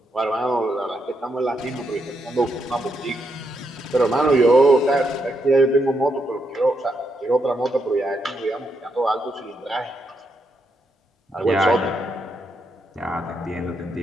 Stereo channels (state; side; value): normal; both; correlation 0.80